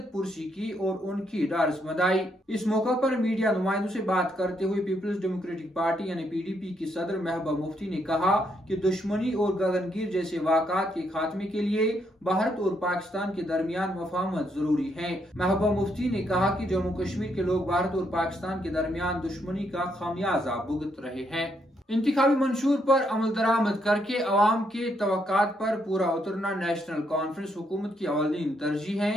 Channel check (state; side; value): normal; both; correlation 0.76